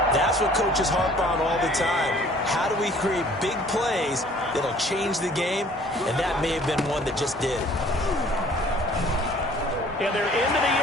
That's what coaches harp on all the time. How do we create big plays that'll change the game? And that may have been one that just did. And they're into the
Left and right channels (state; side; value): normal; both; correlation 0.54